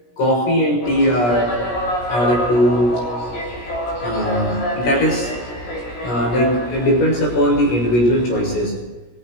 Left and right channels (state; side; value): late; right; 17 ms